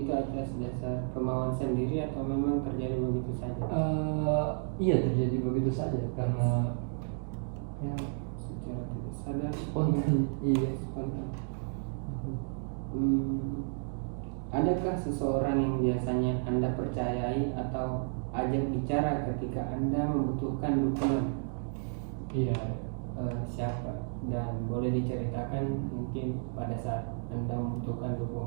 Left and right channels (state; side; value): silent; left; digital silence